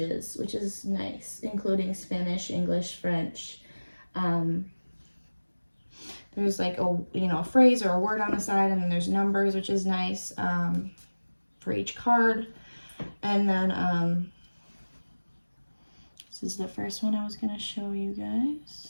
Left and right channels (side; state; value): both; inverted; correlation -1.00